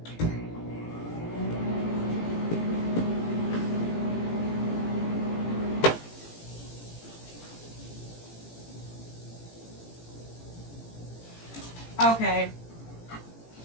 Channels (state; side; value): late; right; 18 ms